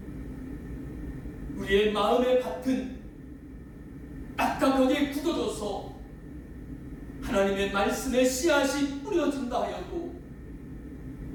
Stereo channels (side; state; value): both; identical; correlation 1.00